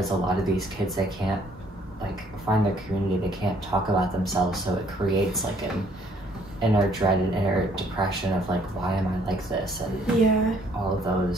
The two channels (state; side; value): normal; both; correlation 0.63